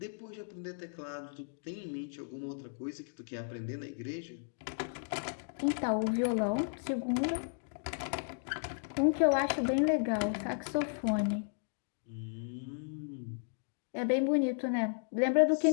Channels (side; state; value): right; silent; digital silence